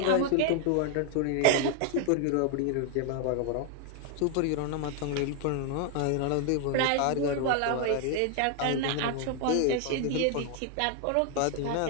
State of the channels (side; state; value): both; different; correlation 0.00